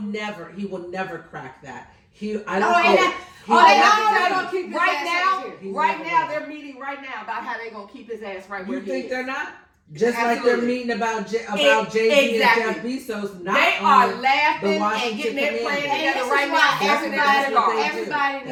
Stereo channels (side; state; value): both; identical; correlation 1.00